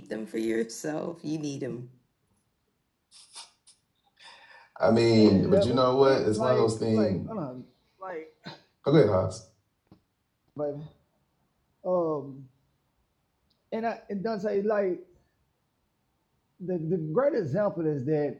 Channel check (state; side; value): identical; both; correlation 1.00